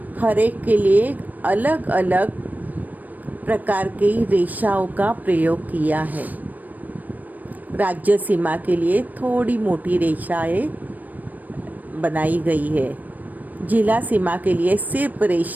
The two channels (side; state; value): left; late; 0.083 ms